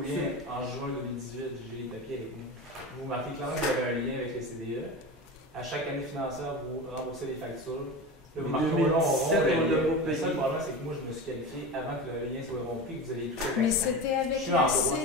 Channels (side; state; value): both; normal; correlation 0.27